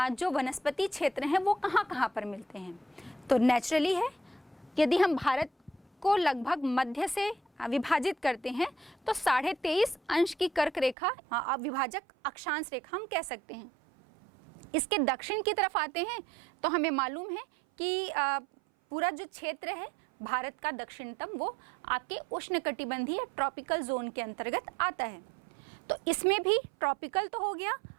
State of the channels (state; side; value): drops out; left; at 11.0 s